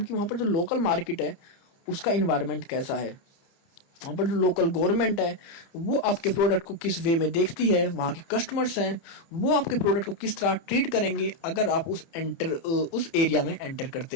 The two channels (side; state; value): right; late; 30 ms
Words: कि वहाँ पर जो लोकल मार्केट है उसका इन्वायरमेंट कैसा है, वहाँ पर जो लोकल गवर्नमेंट है वो आपके प्रोडक्ट को किस वे में देखती है, वहाँ के कस्टमर्स हैं वो आपके प्रोडक्ट को किस तरह ट्रीट करेंगे अगर आप उस एरिया में एंटर